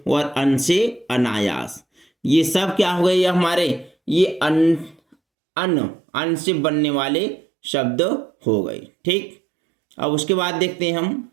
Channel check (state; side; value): drops out; left; at 5.2 s